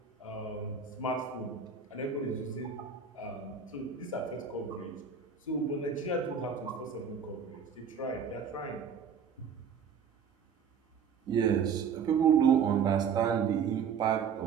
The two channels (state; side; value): quieter; left; 6.7 dB